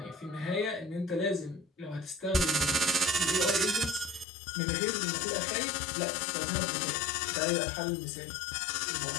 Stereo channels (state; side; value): drops out; right; at 4.2 s